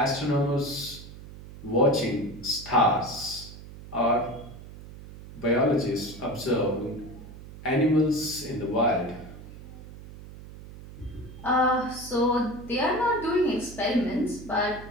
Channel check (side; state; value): right; noise; hum, 15 dB below the sound